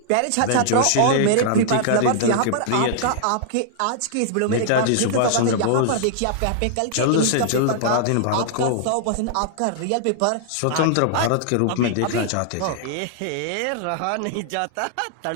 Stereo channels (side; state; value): both; different; correlation -0.01